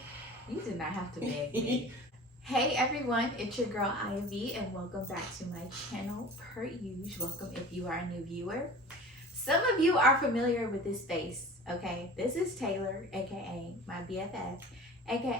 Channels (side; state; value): both; normal; correlation 0.39